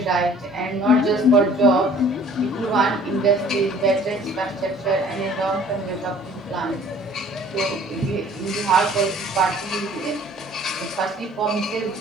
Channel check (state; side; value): normal; both; correlation 0.52